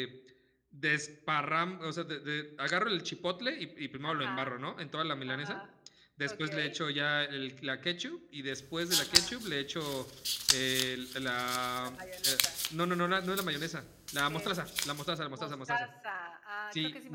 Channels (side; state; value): both; identical; correlation 1.00